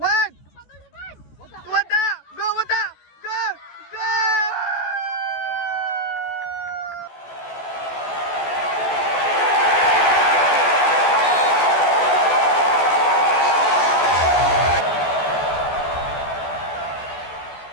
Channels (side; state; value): right; late; 14 ms